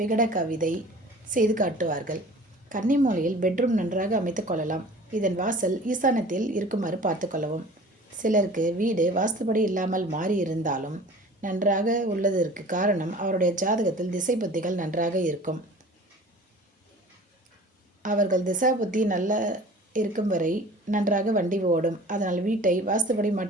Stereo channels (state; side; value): normal; both; correlation 0.44